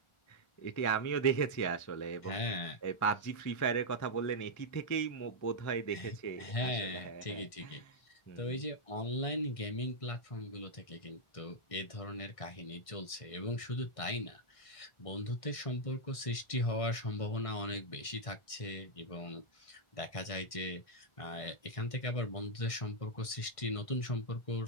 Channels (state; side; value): late; right; 1.6 ms